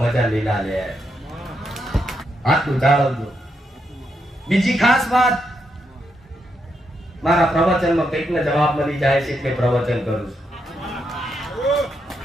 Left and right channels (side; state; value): both; normal; correlation 0.81